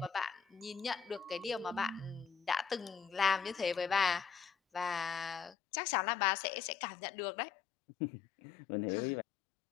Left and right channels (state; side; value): drops out; right; at 5.6 s